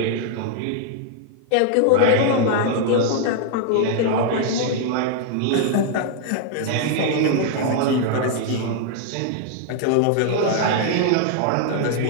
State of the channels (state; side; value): different; both; correlation 0.00